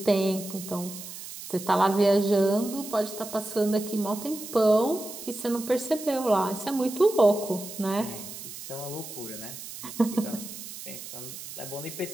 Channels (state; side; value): noise; right; hiss, 11 dB below the sound